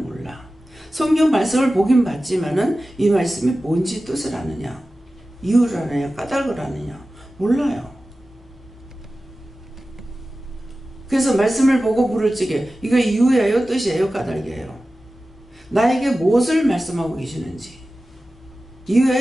성경 말씀을 보긴 봤지만은 이 말씀이 뭔지 뜻을 아느냐, 이유를 아느냐, 까닭을 아느냐 몰라요. 그래서 말씀을 보고 물을 찌게 이거 이유예요, 뜻이에요, 까닭이에요? 나에게 무엇을 말씀하고 계시는지,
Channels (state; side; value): normal; both; correlation 0.95